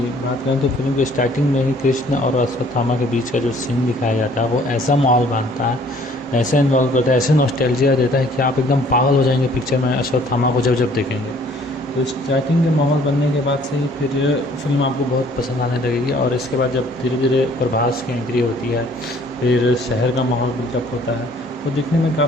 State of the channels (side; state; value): both; normal; correlation 0.58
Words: बात करें तो फिल्म के स्टार्टिंग में ही कृष्ण और अश्वत्थामा के बीच का जो सीन दिखाया जाता है वो ऐसा माहौल बांधता है, ऐसा इन्वॉल्व करता है, ऐसे नॉस्टैल्जिया देता है कि आप एकदम पागल हो जाएंगे पिक्चर में अश्वत्थामा को जब जब देखेंगे। तो स्टार्टिंग के माहौल बनने के बाद से ही फिर फिल्म आपको बहुत पसंद आने लगेगी। और इसके बाद जब धीरे धीरे प्रभास की एंट्री होती है, फिर शहर का माहौल बिल्डअप होता है, वो देखने में